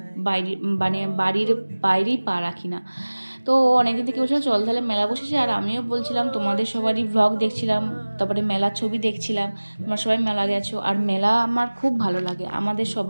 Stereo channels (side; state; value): both; inverted; correlation -1.00